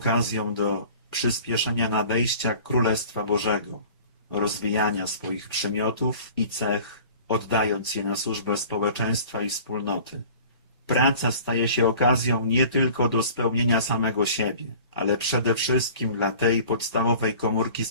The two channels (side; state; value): both; inverted; correlation -0.45